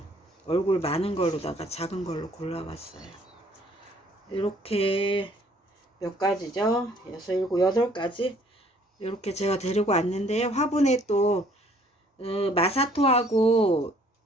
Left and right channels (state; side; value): normal; both; correlation 0.60